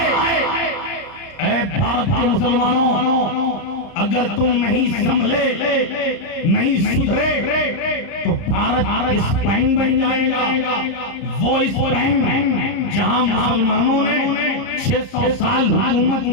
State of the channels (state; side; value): late; right; 30 ms